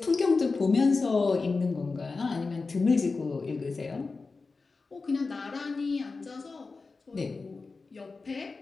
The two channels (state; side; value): quieter; right; 4.1 dB